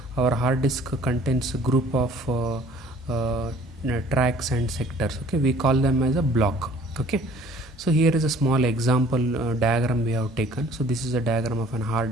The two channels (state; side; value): normal; both; correlation 0.53